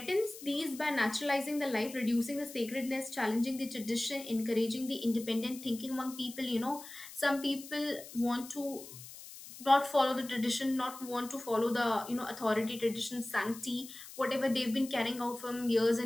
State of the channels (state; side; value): noise; left; hiss, 15 dB below the sound